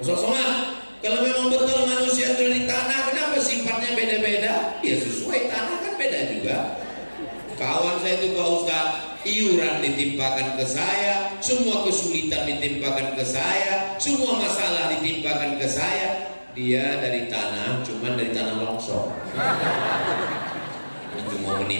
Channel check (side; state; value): both; inverted; correlation -1.00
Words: Kosong-kosongan. Kalau memang betul manusia itu dari tanah, kenapa sifatnya beda-beda? Ya sesuai tanah kan beda juga. Kawan saya itu Pak Ustaz, iuran ditimpakan ke saya, semua kesulitan ditimpakan ke saya, semua masalah ditimpakan ke saya. Dia dari tanah, cuman dari tanah longsor. Itu mau